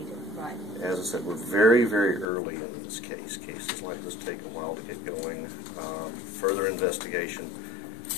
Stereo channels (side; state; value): right; drops out; at 2.2 s